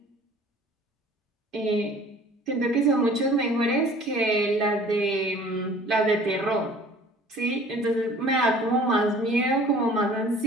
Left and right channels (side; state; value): both; normal; correlation 0.49